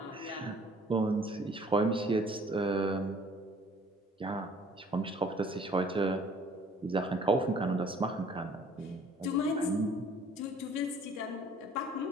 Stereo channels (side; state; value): both; normal; correlation 0.55